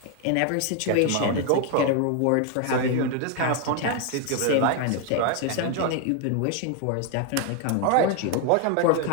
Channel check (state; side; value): different; both; correlation 0.01